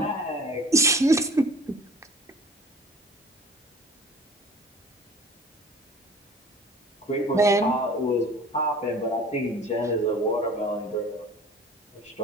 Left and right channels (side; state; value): both; normal; correlation 0.45